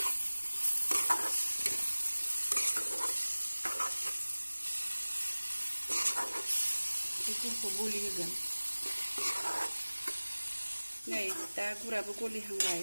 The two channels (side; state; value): both; inverted; correlation -1.00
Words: बेफोरखौ गलि होगोन नै दा गुराबो गलिहांबाय